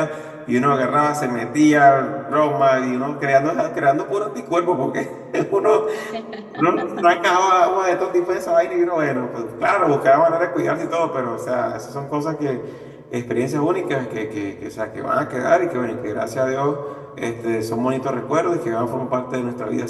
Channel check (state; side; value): identical; both; correlation 1.00